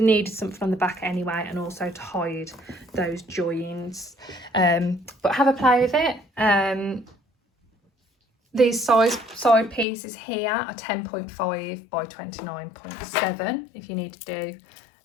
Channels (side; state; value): right; drops out; at 9.9 s